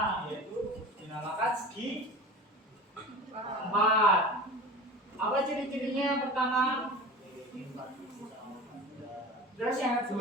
yaitu dinamakan segi 4. Apa ciri-cirinya yang pertama? Terus yang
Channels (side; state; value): both; normal; correlation 0.36